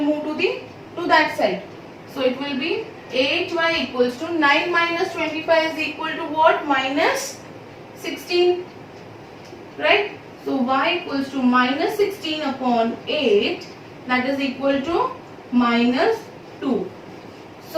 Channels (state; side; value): identical; both; correlation 1.00